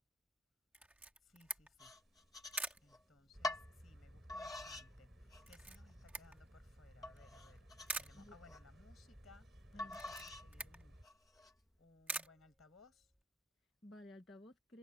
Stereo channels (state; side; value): normal; both; correlation 0.61